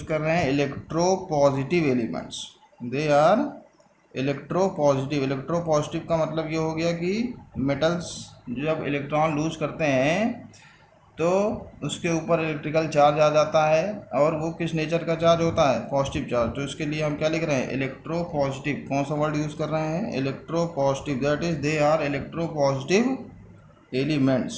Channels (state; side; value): identical; both; correlation 1.00